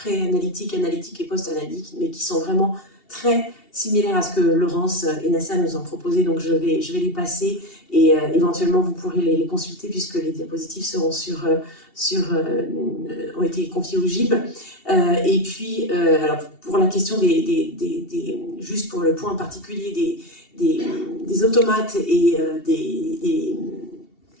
analytiques et post-analytiques, mais qui sont vraiment très similaires à ce que Laurence et Nasser nous ont proposé. Donc je vais les passer et éventuellement vous pourrez les consulter puisque les diapositives seront ont été confiées au GIB. Et puis alors pour la question juste pour le point particulier des automates et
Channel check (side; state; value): right; late; 2.7 ms